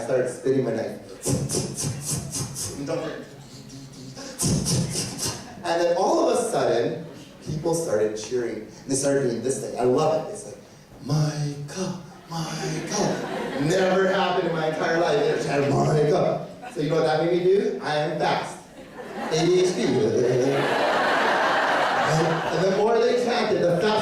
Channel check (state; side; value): identical; both; correlation 1.00